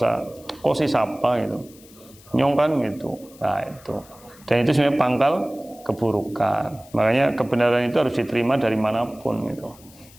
kok sih siapa gitu, nyongkan gitu. Nah itu. Dan itu sebenarnya pangkal keburukan. Makanya kebenaran itu harus diterima dari manapun gitu.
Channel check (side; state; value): left; noise; hiss, 24 dB below the sound